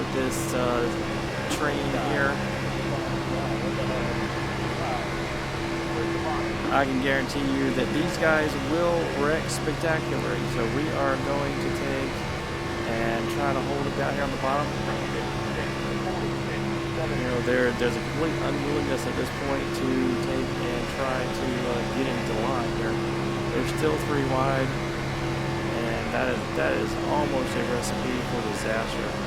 this train here. I can guarantee you that these guys will wreck spectacularly. So we are going to take and try to hold it down here on the bottom. You know, there's a complete unwillingness at this point to take and try to get into the line here. They're still 3 wide, and that is almost a recipe for disaster.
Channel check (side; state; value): both; identical; correlation 1.00